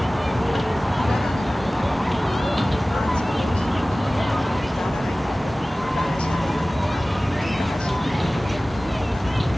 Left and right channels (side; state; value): both; normal; correlation 0.98